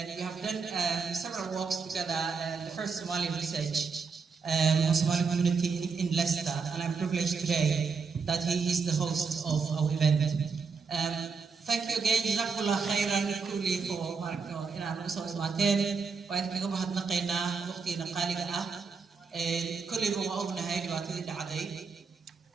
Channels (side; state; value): left; quieter; 5.2 dB